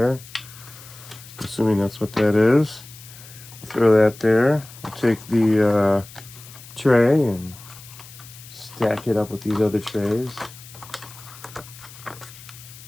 Assuming that's what that is. Throw that there. We'll take the tray and stack it up with these other trays.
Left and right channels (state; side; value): noise; left; hiss, 18 dB below the sound